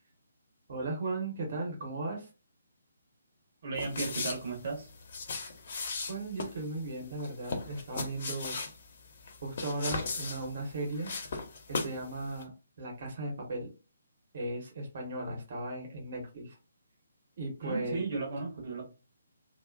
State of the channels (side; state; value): both; inverted; correlation -0.66